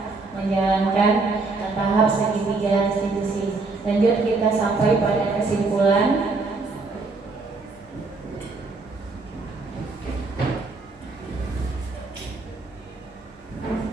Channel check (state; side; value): quieter; left; 3.7 dB